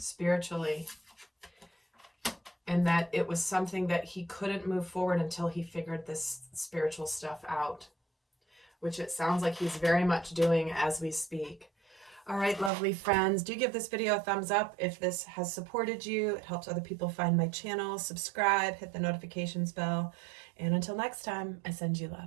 And that it was something that he couldn't move forward until he figured this spiritual stuff out, which it sounds like he's very much doing as we speak. All right, lovely friends, do give this video a thumbs up if this has supported you. It helps other people find my channel. Subscribe, hit the notifications bell. And until next time, I send you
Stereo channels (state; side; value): drops out; left; at 12.7 s